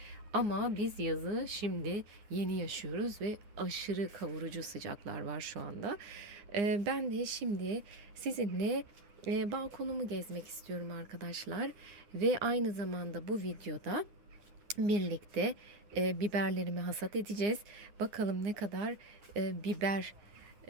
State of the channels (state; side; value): late; left; 9.7 ms